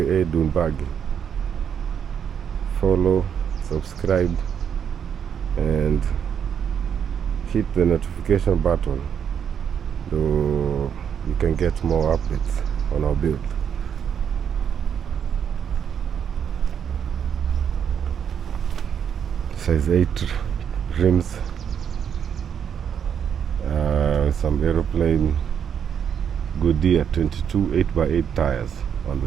Buggy. Follow, subscribe, and hit the notification button so you can get more updates on our build. Size 8 rims, some aeroplane Goodyear 22 8x8 tires on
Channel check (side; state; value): left; quieter; 8.0 dB